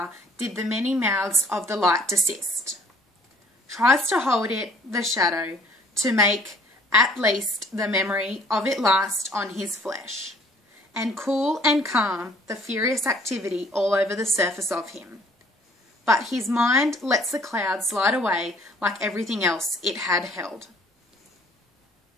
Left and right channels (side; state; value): both; normal; correlation 0.57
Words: did the many mouths of the light desist. Tries to hold it, the shadow, to make at least the memory of it last on his flesh, and cool and calm the furious activity all over the surface of him. But his mind lets the cloud slide away like everything else it had held.